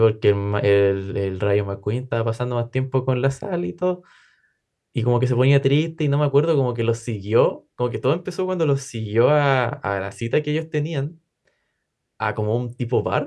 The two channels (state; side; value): identical; both; correlation 1.00